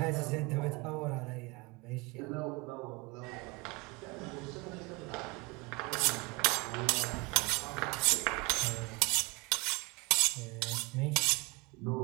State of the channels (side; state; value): left; quieter; 26.9 dB